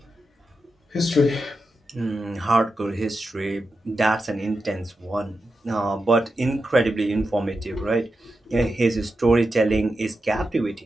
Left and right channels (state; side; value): normal; both; correlation 0.89